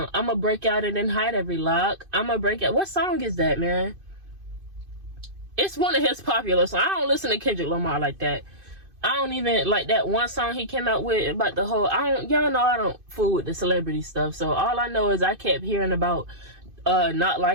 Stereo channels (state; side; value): late; left; 2.5 ms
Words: I'ma break out and then hide every lock. I'ma break out. What song is that, man? It's one of his popular songs. I don't listen to Kendrick Lamar like that. I don't even like that one song he came out with about the whole, y'all know I don't fool with the celebrity stuff. So all I know is I kept hearing about not